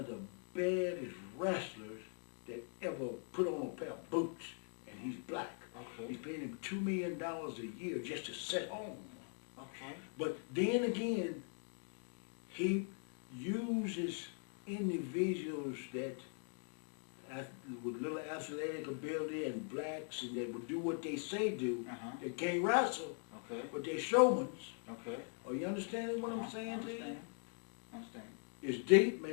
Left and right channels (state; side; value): silent; right; 50 dB below the other